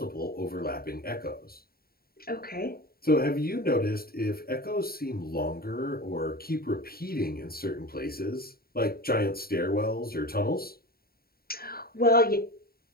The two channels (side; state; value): right; late; 0.44 ms